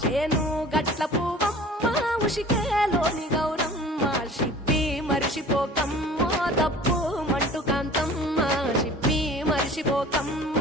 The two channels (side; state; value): both; normal; correlation 0.45